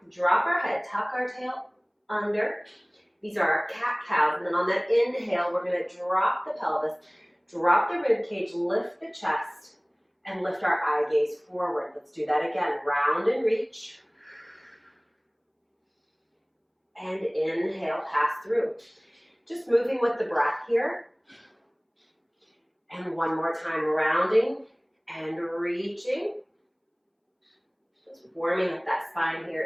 drop our head, tuck our tail under. These are our cat-cows. And then on that inhale, we're going to drop the pelvis, drop the rib cage, lift the chest, and lift our eye gaze forward. Let's do that again. Round and reach. And inhale, pass through. Just moving with the breath here. And one more time, rounding and reaching. Just warming up that spine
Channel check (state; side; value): identical; both; correlation 1.00